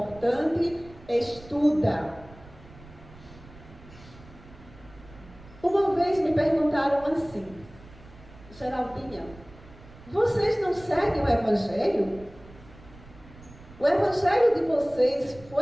estuda. Uma vez me perguntaram assim: Geraldinha, vocês não seguem o Evangelho? O Evangelho de vocês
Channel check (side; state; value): right; noise; rumble, 21 dB below the sound